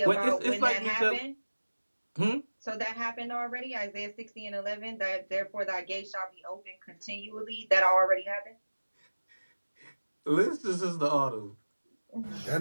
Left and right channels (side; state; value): both; inverted; correlation -1.00